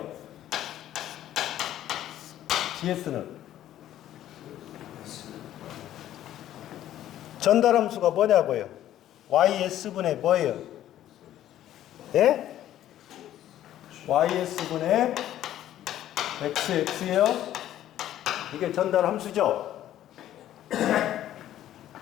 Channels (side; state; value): right; quieter; 12.4 dB